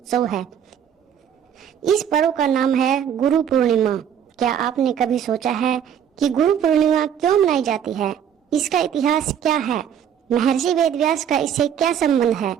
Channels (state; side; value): quieter; left; 8.9 dB